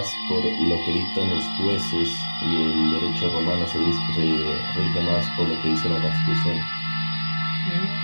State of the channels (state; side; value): inverted; both; correlation -1.00